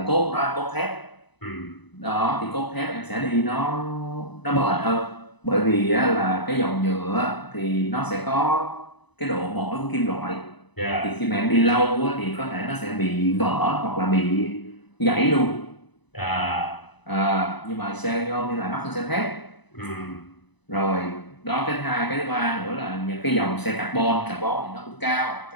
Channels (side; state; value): right; late; 1.0 ms